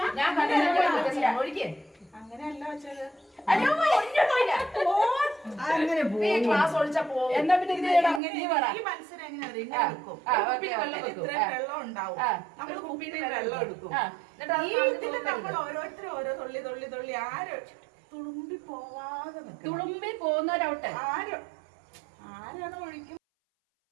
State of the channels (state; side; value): drops out; left; at 8.2 s